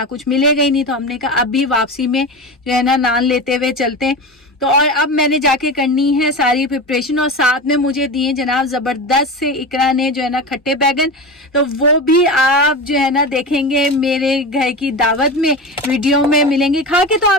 कुछ मिलेगा ही नहीं। तो हमने कहा अभी वापसी में जो है ना नान लेते हुए चलते हैं। तो और अब मैंने जाके करनी है सारी प्रिपरेशन और साथ में मुझे दिए जनाब ज़बरदस्त से इकरा ने जो है ना खट्टे बैगन। तो वो भी आप जो है ना देखेंगे मेरे घर की दावत में, वीडियो में मिलेंगे। खा के तो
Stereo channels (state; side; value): normal; both; correlation 0.25